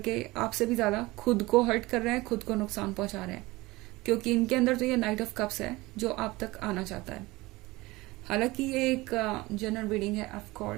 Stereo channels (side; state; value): left; quieter; 20.9 dB